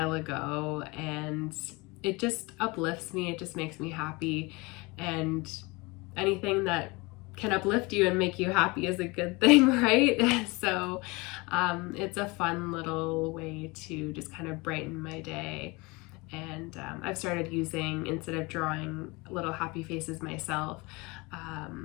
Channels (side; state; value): right; quieter; 25.4 dB